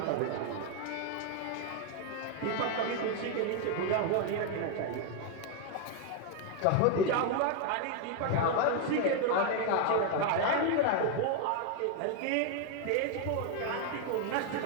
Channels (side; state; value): both; different; correlation 0.01